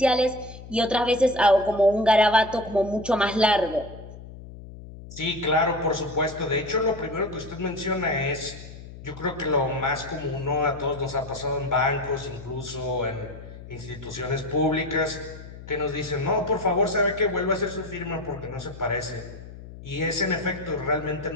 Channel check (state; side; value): noise; left; hum, 15 dB below the sound